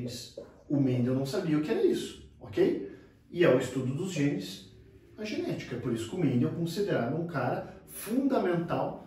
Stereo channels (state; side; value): identical; both; correlation 1.00